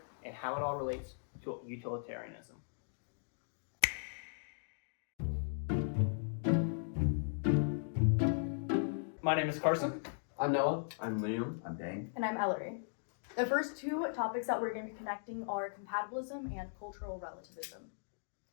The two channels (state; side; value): silent; right; digital silence